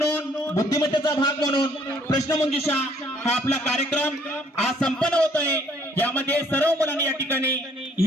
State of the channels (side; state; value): both; normal; correlation 0.62